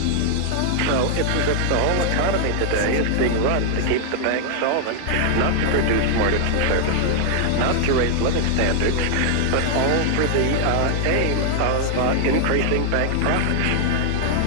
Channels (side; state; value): both; different; correlation -0.01